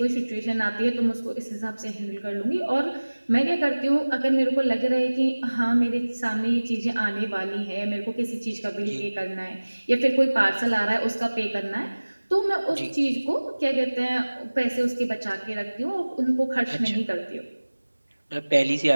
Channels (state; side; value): inverted; both; correlation -1.00